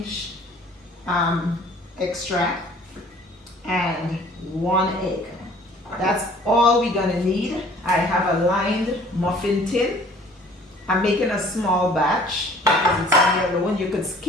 extract and 1 egg. That's all we're gonna need. I have a lined muffin tin. I'm making a small batch because it's on your own. You could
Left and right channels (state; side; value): normal; both; correlation 0.53